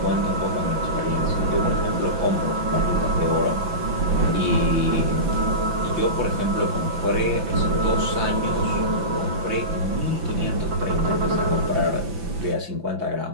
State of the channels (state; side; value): late; left; 5.9 ms